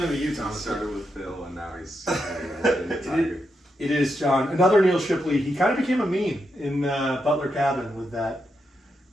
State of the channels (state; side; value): normal; both; correlation 0.84